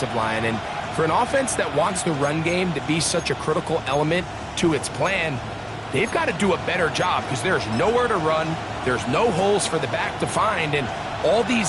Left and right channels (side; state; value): both; identical; correlation 1.00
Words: line. And for an offense that wants the run game to be such a critical element to its plan, they've got to do a better job because there's nowhere to run. There's no holes for the back to find. And all